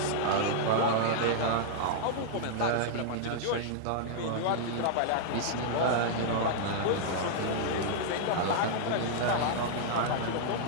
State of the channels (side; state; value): both; different; correlation -0.01